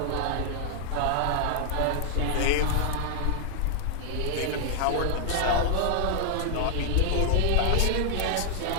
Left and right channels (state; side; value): different; both; correlation 0.00